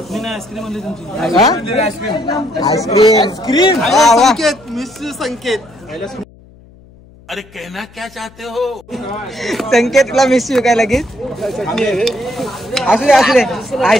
आईस्क्रीम संकेत मिस संकेत. अरे कहना क्या चाहते हो? संकेतला मिस यू काय लगेच. असू दे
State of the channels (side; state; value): left; noise; hum, 25 dB below the sound